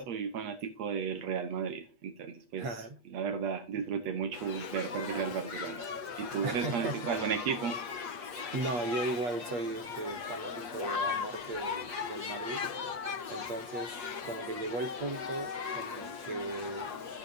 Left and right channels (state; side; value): late; left; 8.4 ms